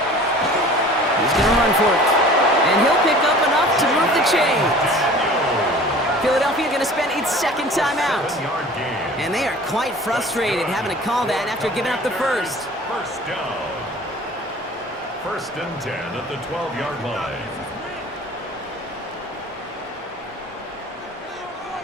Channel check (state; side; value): normal; both; correlation 0.44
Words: He's going to run for it. And he'll pick up enough to move the chains. Philadelphia going to spend its 2nd timeout. And they are quite frustrated having to call that after giving up the first. First down. 1st and 10 at the 12-yard line.